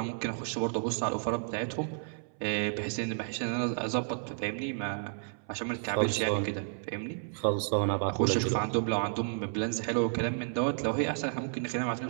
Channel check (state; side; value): silent; left; 57 dB below the other